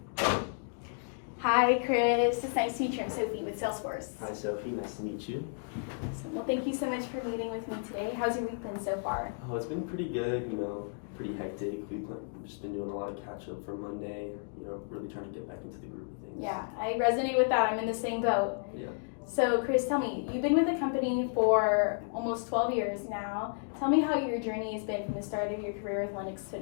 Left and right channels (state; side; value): silent; right; digital silence